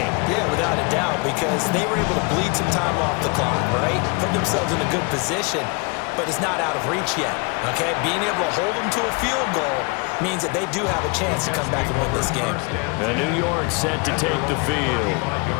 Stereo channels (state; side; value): quieter; right; 30.2 dB